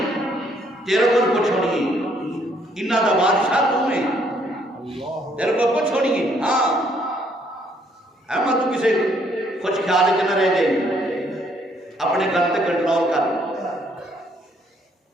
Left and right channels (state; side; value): normal; both; correlation 0.68